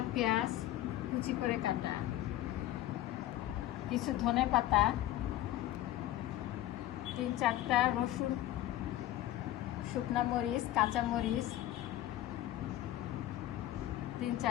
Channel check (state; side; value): quieter; right; 14.1 dB